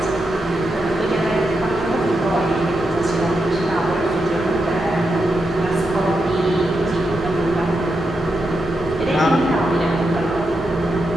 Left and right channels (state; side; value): normal; both; correlation 0.85